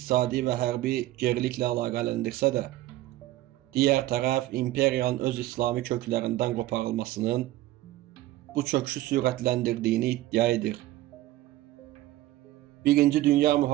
və hərbi geriliklə əlaqələndirsə də, digər tərəf imperiyanın öz İslami köklərindən qoparılmasının bu çöküşü sürətləndirdiyini iddia edir. Birinci Dünya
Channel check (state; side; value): quieter; left; 15.9 dB